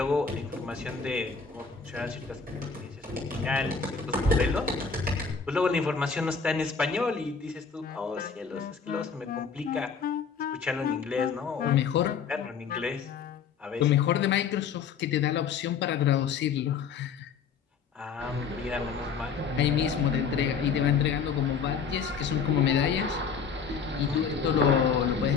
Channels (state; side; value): quieter; right; 6.0 dB